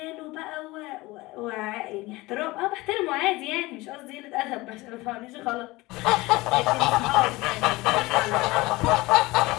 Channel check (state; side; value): quieter; right; 21.0 dB